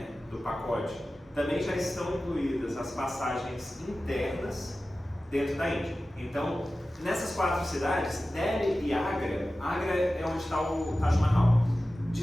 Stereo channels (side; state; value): both; normal; correlation 0.95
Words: do pacote, também já estão incluídas as passagens internas dentro da Índia. Então, nessas 4 cidades, Delhi e Agra, Agra é onde está o Taj Mahal.